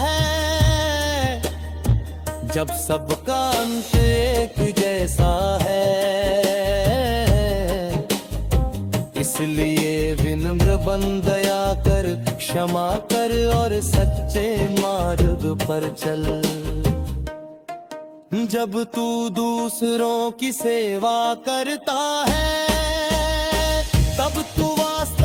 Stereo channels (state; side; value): identical; both; correlation 1.00